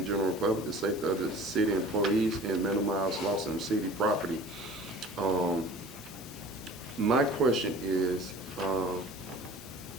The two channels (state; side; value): normal; both; correlation 0.43